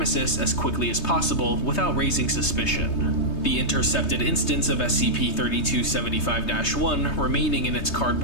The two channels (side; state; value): right; late; 3.2 ms